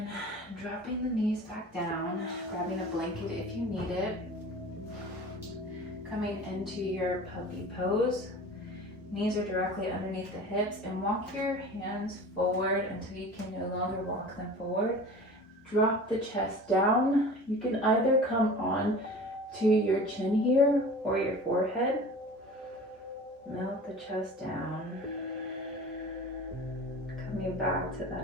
dropping the knees back down, grabbing a blanket if you need it. Coming into your puppy pose. Knees are directly underneath the hips, and walk your hands forward until you can no longer walk them forward. Drop the chest down. You can either come on to your chin here or your forehead. Melt the chest down. Coming back to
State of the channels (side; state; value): both; normal; correlation 0.39